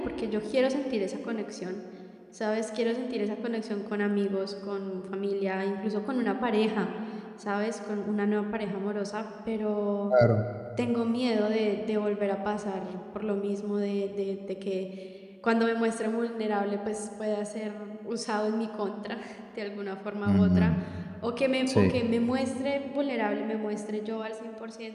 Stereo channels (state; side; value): identical; both; correlation 1.00